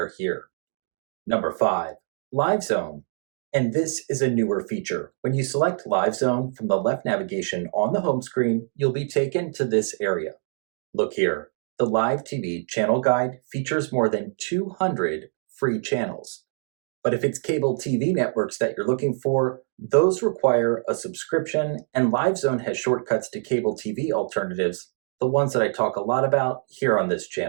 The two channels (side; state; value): left; silent; 62 dB below the other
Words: here. Number 5, Live Zone. And this is a newer feature. When you select Live Zone from the left navigation on the home screen, you'll be taken to this area. Look here. The Live TV channel guide features more than 200 free channels. But if it's cable TV networks that you're looking for, those require a subscription, and LiveZone has shortcuts to cable TV alternatives, the ones that I talk a lot about here on this